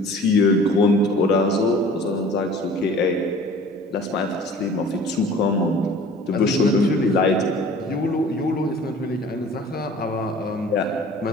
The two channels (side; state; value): both; normal; correlation 0.46